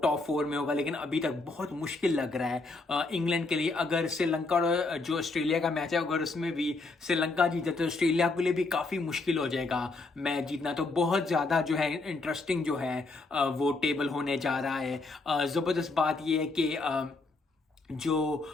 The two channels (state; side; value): quieter; right; 3.5 dB